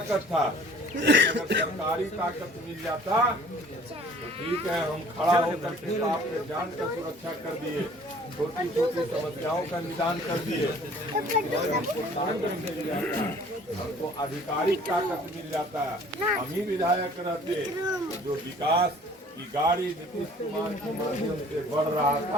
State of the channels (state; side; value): normal; both; correlation 0.52